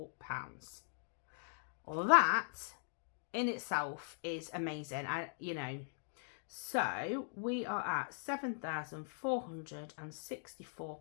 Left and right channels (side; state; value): right; silent; digital silence